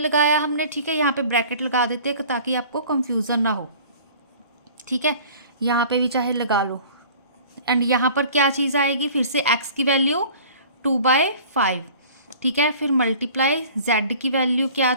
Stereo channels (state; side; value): inverted; both; correlation -0.46